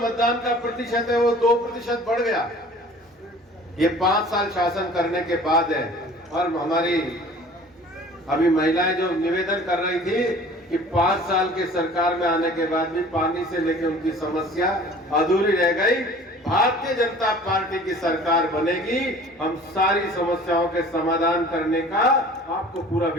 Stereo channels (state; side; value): normal; both; correlation 0.47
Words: का प्रतिशत है वो 2% बढ़ गया। ये 5 साल शासन करने के बाद है। और हमारी अभी महिलाएं जो निवेदन कर रही थी कि 5 साल के सरकार में आने के बाद भी पानी से लेकर उनकी समस्या अधूरी रह गई। भारतीय जनता पार्टी की सरकार बनेगी, हम सारी समस्याओं के समाधान करने का आपको पूरा